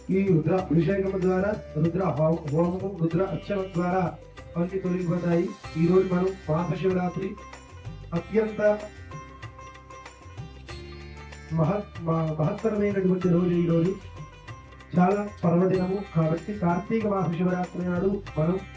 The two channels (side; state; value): both; identical; correlation 1.00